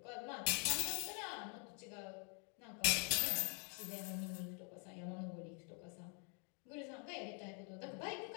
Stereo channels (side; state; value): right; quieter; 39.2 dB